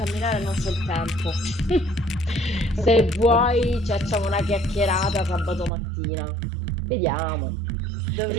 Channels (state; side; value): drops out; left; at 5.7 s